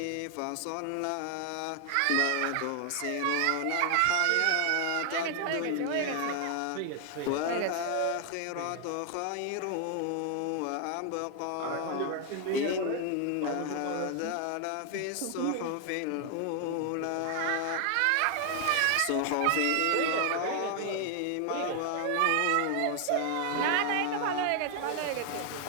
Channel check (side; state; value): both; different; correlation 0.00